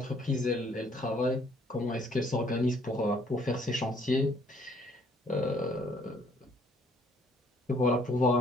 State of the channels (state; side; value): normal; both; correlation 0.63